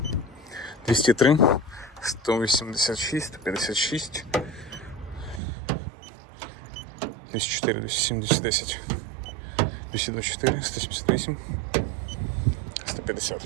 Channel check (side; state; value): left; drops out; at 5.4 s